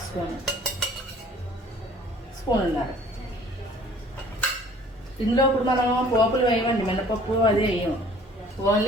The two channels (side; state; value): both; normal; correlation 0.54